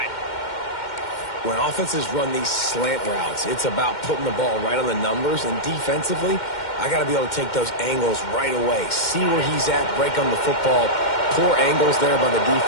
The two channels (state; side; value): late; right; 2.1 ms